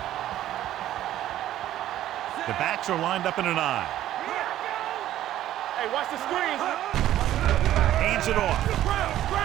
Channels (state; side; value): quieter; left; 12.9 dB